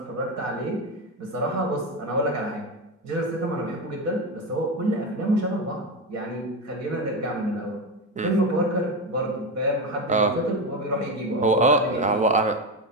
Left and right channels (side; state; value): both; normal; correlation 0.16